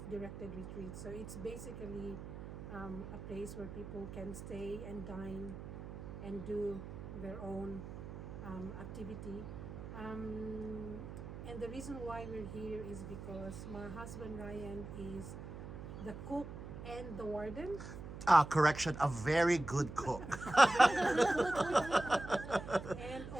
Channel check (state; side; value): noise; right; hum, 10 dB below the sound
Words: retreats. So it's basically a place where people can stay and dine and do their own activity. And the reason why we're here is because my husband Ryan is the cook and the warden. Correction, a very good cook. And